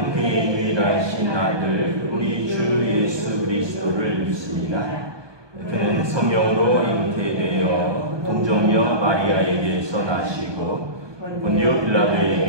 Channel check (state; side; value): late; left; 1.2 ms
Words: 그의 유일하신 아들 우리 주 예수 그리스도를 믿습니다. 그는 성령으로 잉태되어 동정녀 마리아에게서 나시고 본디오